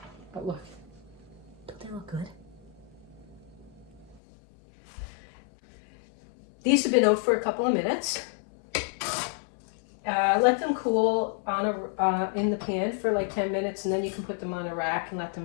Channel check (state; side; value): drops out; right; at 4.2 s